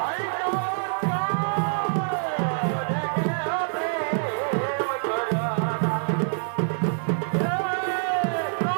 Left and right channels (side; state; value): left; silent; 56 dB below the other